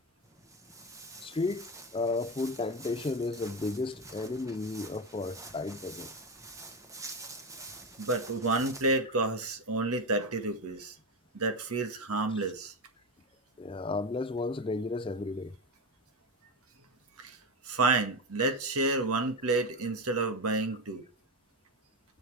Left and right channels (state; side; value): normal; both; correlation 0.17